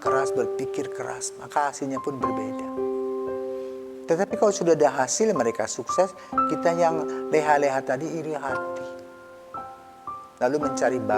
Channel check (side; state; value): both; identical; correlation 1.00